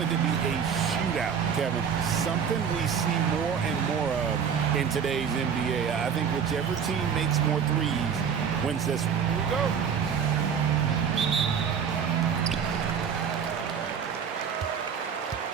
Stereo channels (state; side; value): quieter; left; 7.2 dB